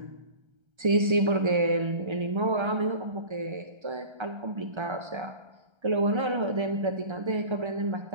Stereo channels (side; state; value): left; late; 1.3 ms